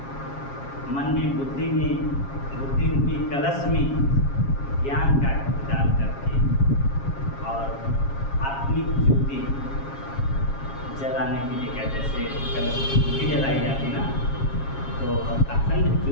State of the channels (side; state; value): right; late; 7.3 ms